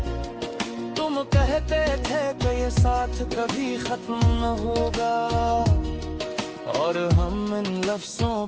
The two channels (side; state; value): both; identical; correlation 1.00